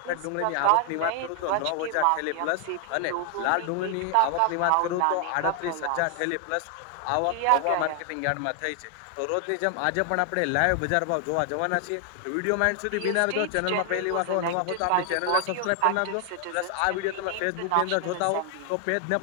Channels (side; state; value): both; different; correlation 0.00